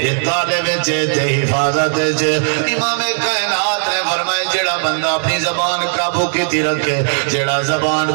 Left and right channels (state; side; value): silent; left; 58 dB below the other